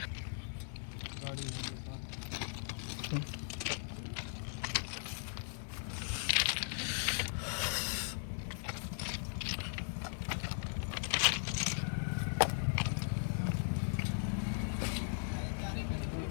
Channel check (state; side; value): silent; right; digital silence